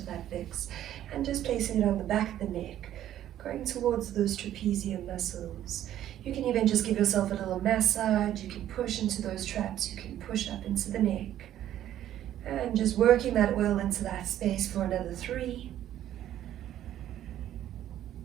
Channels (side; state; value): left; quieter; 11.9 dB